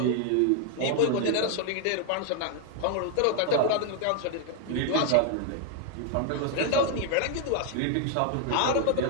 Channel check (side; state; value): both; different; correlation 0.00